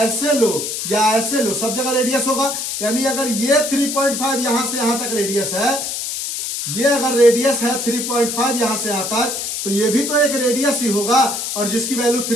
ऐसे लो या ऐसे लो, सब जगह रेडियस होगा, यानी अगर ये 3.5 यहां से यहां तक रेडियस है, ये अगर रेडियस है 3.5 यहां से यहां तक, तो ये भी तो एक रेडियस ही होगा और जिसकी वैल्यू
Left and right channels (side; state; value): left; noise; hiss, 4 dB below the sound